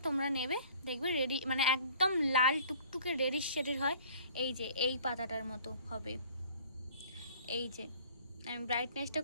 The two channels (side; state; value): both; inverted; correlation -0.51